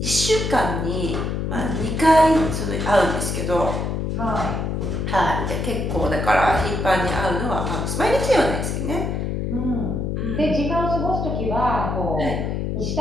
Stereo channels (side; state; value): left; noise; hum, 1 dB below the sound